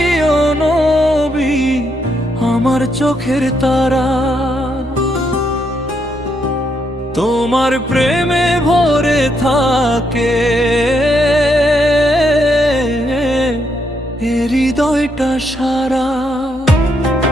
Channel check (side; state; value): both; normal; correlation 0.77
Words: নবী আমার চোখের তারা, তোমার প্রেমে ভরে থাকে এ হৃদয়টা সারা।